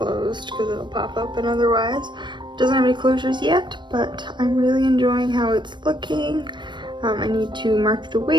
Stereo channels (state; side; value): late; left; 0.22 ms